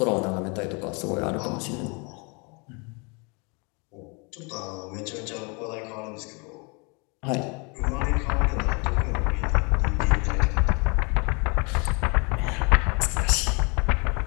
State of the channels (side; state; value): right; quieter; 31.9 dB